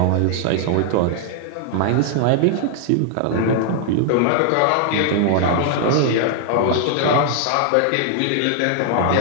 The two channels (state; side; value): different; both; correlation 0.00